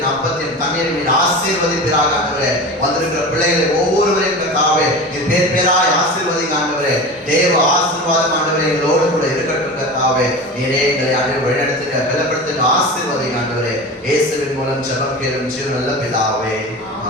அப்பத்தின் தண்ணீரை நீர் ஆசீர்வதிப்பீராக ஆண்டவரே. வந்திருக்கிற பிள்ளைகளை ஒவ்வொருவரையும் கர்த்தாவே நீர் பேர் பேராய் ஆசீர்வதிங்க ஆண்டவரே. தேவ ஆசீர்வாதம் ஆண்டவரே எங்களோடு கூட இருக்கட்டும் கர்த்தாவே. நீரே எங்களை ஆண்டவரே வழிநடத்துங்க, பலப்படுத்துங்க, ஆசீர்வதிங்க ஆண்டவரே. இயேசுவின் மூலம் ஜெபம் கேளும் ஜீவன் நல்ல பிதாவே,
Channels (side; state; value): both; normal; correlation 0.31